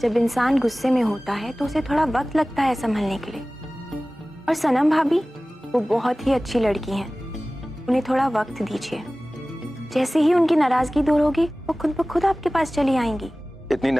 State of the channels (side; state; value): both; normal; correlation 0.98